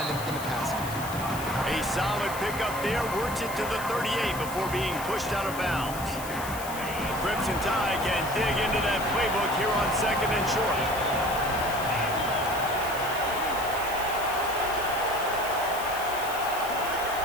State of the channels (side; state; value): left; noise; hiss, 11 dB below the sound